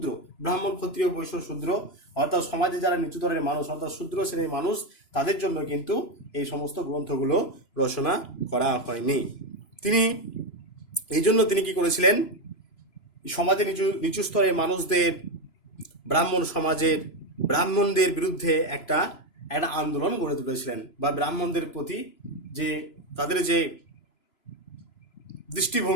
ব্রাহ্মণ, ক্ষত্রিয়, বৈশ্য, শূদ্র, অর্থাৎ সমাজে যারা নিচুতরের মানুষ অর্থাৎ শূদ্র শ্রেণীর মানুষ, তাদের জন্য কিন্তু এই সমস্ত গ্রন্থগুলো রচনা করা হয়নি। তিনি কি করেছিলেন? সমাজে নিচু স্তরের মানুষদের, ব্রাহ্মণদের বিরুদ্ধে একটা আন্দোলন গড়ে তুলেছিলেন, বা ব্রাহ্মণদের প্রতি যে তাদের যে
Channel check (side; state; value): right; late; 3.0 ms